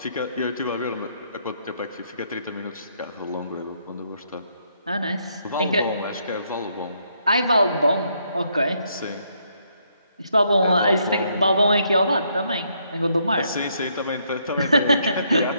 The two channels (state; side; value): inverted; both; correlation -0.73